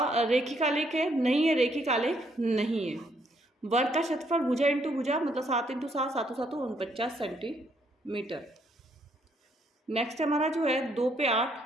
आलेख है? नहीं है, रेखिक आलेख नहीं है। वर्ग का क्षेत्रफल भुजा इंटू भुजा मतलब 7 × 7 7 7 49 सेंटीमीटर। नेक्स्ट हमारा जो है 2 पे 8,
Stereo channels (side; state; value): both; normal; correlation 0.71